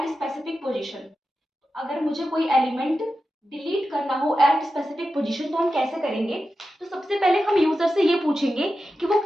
स्पेसिफिक पोजीशन, अगर मुझे कोई एलिमेंट डिलीट करना हो एट स्पेसिफिक पोजीशन तो हम कैसे करेंगे। तो सबसे पहले हम यूजर से ये पूछेंगे कि वो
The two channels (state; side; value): normal; both; correlation 0.92